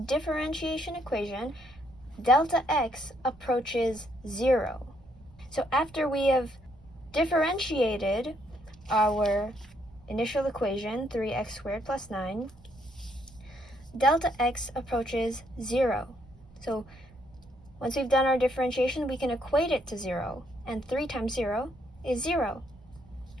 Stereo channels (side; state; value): right; noise; rumble, 24 dB below the sound